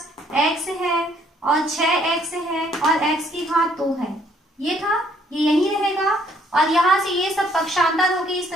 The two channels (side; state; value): both; normal; correlation 0.65